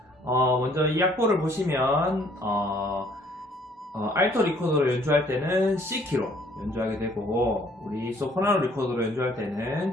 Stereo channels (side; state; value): both; normal; correlation 0.60